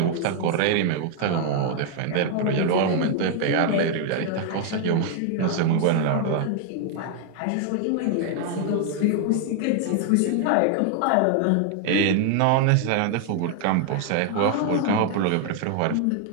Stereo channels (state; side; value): different; both; correlation 0.00